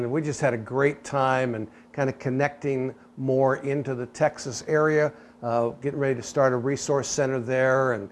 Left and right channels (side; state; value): both; identical; correlation 1.00